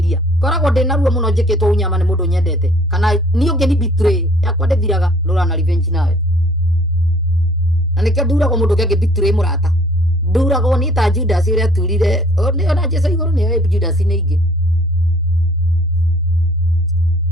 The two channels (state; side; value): normal; both; correlation 0.56